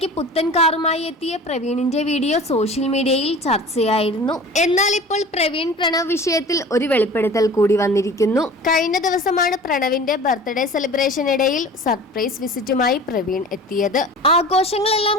പുത്തൻ കാറുമായി എത്തിയ പ്രവീണിന്റെ വീഡിയോ സോഷ്യൽ മീഡിയയിൽ ചർച്ചയായിരുന്നു. എന്നാൽ ഇപ്പോൾ പ്രവീൺ പ്രണവ് വിഷയത്തിൽ ഒരു വെളിപ്പെടുത്തൽ കൂടി വന്നിരിക്കുന്നു. കഴിഞ്ഞ ദിവസമാണ് പ്രണവിന്റെ ബർത്ത്ഡേ സെലിബ്രേഷനിടയിൽ സർപ്രൈസ് വിസിറ്റുമായി പ്രവീൺ എത്തിയത്.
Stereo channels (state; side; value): normal; both; correlation 0.40